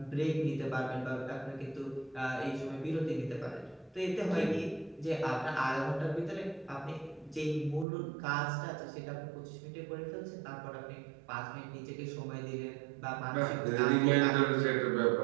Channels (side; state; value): left; drops out; at 7.9 s